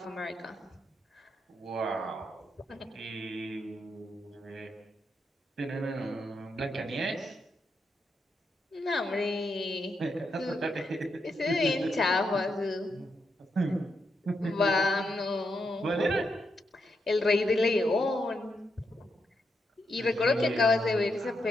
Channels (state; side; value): normal; both; correlation 0.82